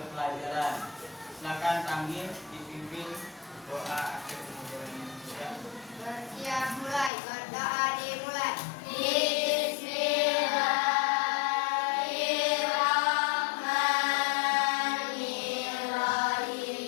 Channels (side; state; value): right; drops out; at 7.1 s